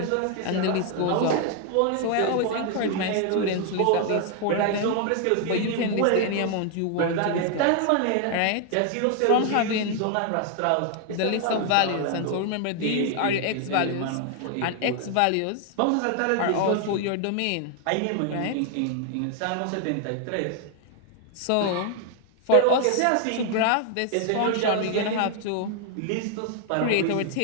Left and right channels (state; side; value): different; both; correlation 0.00